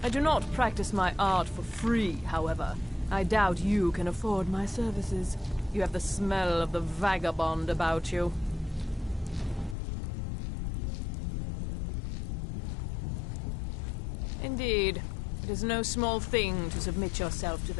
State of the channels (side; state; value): right; drops out; at 9.8 s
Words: I do not practice my art for free, however. I doubt you can afford my services. You have the smell of the vagabond about you. Indeed, it is no small thing to submit yourself to